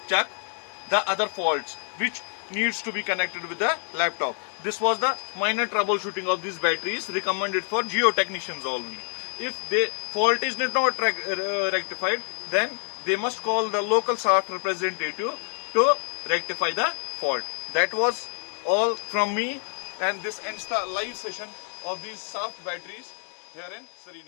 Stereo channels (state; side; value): silent; right; digital silence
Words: check the other faults which needs to be connected with the laptop. This was the minor troubleshooting of these batteries, recommended for geotechnicians only. If the fault is not rectified, then they must call the local SAFT representative to rectify the fault. That was all from me, and this ends the live session of these SAFT batteries here in